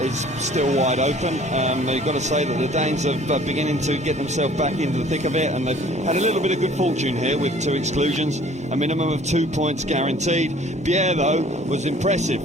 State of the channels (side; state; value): both; normal; correlation 0.52